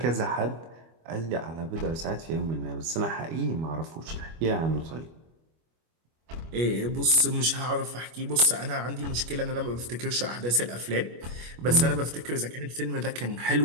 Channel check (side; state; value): left; late; 25 ms